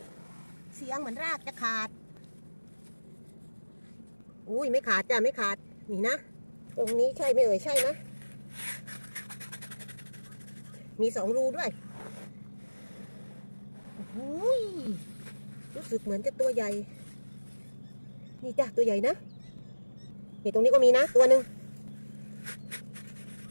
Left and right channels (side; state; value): both; inverted; correlation -1.00